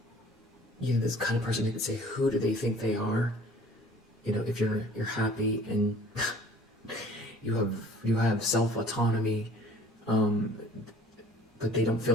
This kind of person who could say, who do they think they are? If you're happy and you have self-autonomy, but they don't feel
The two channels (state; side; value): normal; both; correlation 0.51